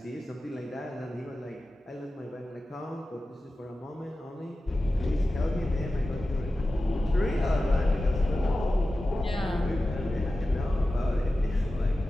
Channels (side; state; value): both; normal; correlation 0.95